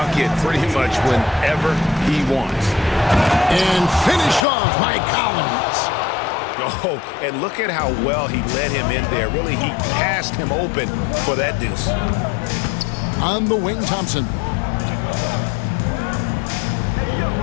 pretty much whenever he wants. And finished off by Collins. Oh, and look at how well he led him in there. Really, he passed him open for that deuce. On the wing, Thompson.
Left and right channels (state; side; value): drops out; right; at 4.5 s